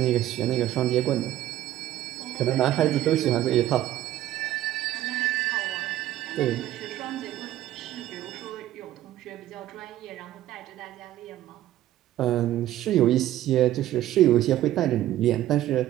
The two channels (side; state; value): left; quieter; 13.6 dB